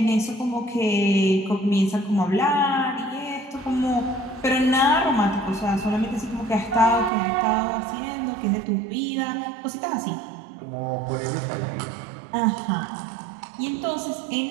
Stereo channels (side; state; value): left; drops out; at 7.1 s